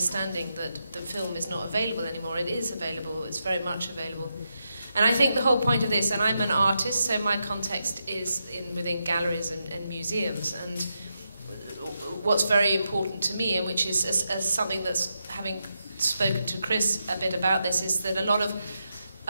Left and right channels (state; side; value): inverted; both; correlation -0.85